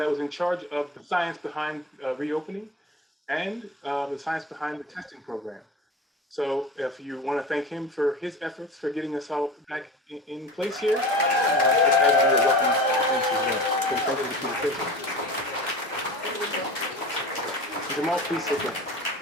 was in charge of the science behind reopening and the science behind the testing program. So if you want to thank him for his efforts for getting us all back in place here, that would be a welcome thanks as well. So thank you to Peter Frazier. Jamal, please sit down.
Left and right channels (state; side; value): normal; both; correlation 0.34